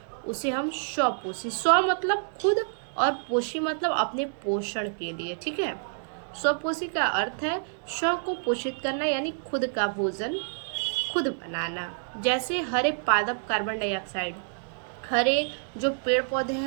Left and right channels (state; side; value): silent; left; digital silence